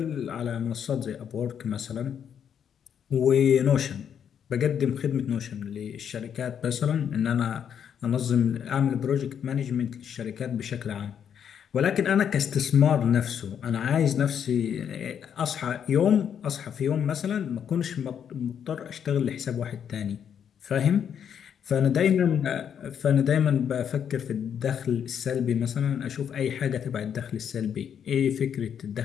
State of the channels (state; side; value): quieter; right; 8.3 dB